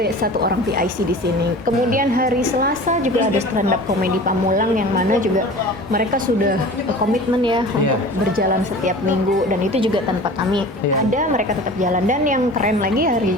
orang PIC di sini. Kemudian hari Selasa juga ada stand up comedy Pamulang yang mana juga mereka sudah komitmen ya untuk berjalan setiap minggu, dan itu juga tanpa kami Iya. ada, mereka tetap jalan. Dan yang keren lagi hari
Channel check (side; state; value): both; normal; correlation 0.39